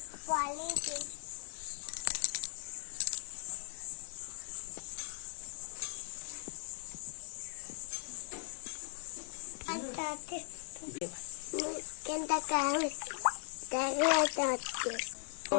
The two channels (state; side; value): silent; right; digital silence